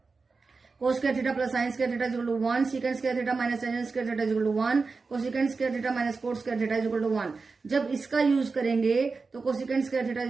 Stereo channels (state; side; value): quieter; left; 4.3 dB